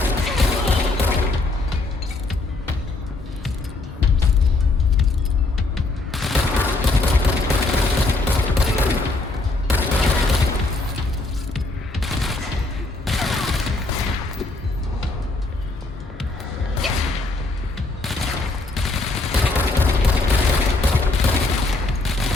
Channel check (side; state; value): right; quieter; 3.2 dB